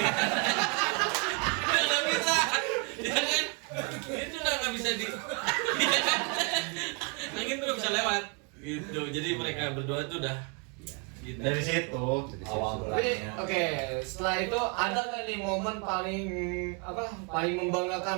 Udah nggak bisa, ya kan? Itu udah nggak bisa di. Angin tuh nggak bisa lewat, gitu. Jadi mereka berdua tuh udah. Gitu. Dari situ awal Tapi mulanya. oke, setelah itu ada nggak nih momen paling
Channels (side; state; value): left; quieter; 35.7 dB